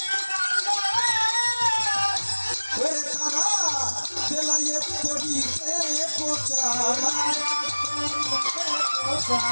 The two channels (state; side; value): inverted; both; correlation -1.00